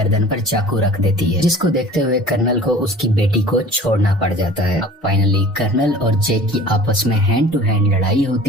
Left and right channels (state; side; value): normal; both; correlation 0.44